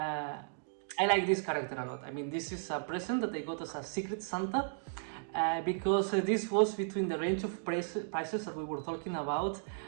like this character a lot. I mean, this is a present that I got as a Secret Santa, because this was between the range of prices that we were talking about,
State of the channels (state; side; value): silent; left; digital silence